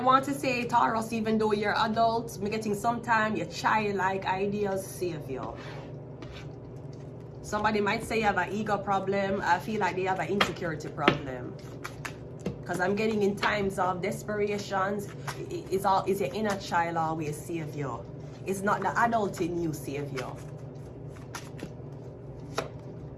to say, Taurus, even though you're adult, I'm getting sometime your childlike ideas save you. Somebody might say you have an ego problem. I feel like they have an insecurity problem. Because I'm getting in times of desperations, it's your inner child always save you. It's not the adult in you save you.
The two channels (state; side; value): identical; both; correlation 1.00